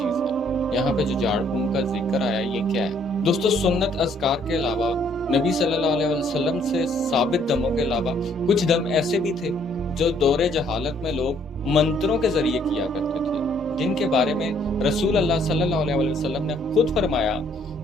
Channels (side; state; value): both; normal; correlation 0.65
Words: ہے، یہاں پہ جو جھاڑ پھونک کا ذکر آیا یہ کیا ہے؟ دوستو سنت اذکار کے علاوہ نبی صلی اللہ علیہ وسلم سے ثابت دموں کے علاوہ کچھ دم ایسے بھی تھے جو دور جہالت میں لوگ منتروں کے ذریعے کیا کرتے تھے، جن کے بارے میں رسول اللہ صلی اللہ علیہ وسلم نے خود فرمایا